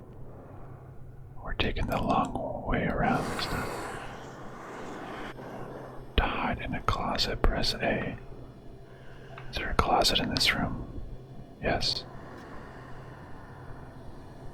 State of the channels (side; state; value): both; identical; correlation 1.00